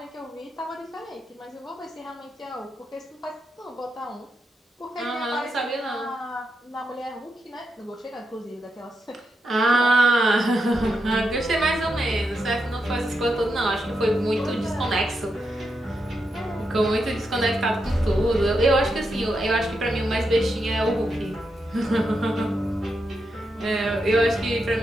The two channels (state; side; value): normal; both; correlation 0.85